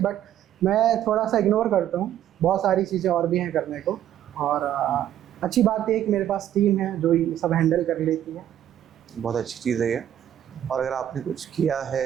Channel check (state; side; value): quieter; left; 11.3 dB